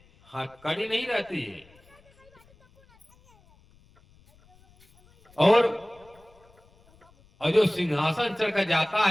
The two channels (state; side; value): noise; left; rumble, 30 dB below the sound